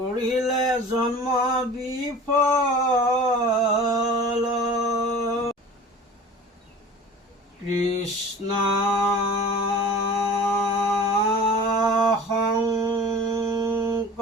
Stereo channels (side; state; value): both; normal; correlation 0.40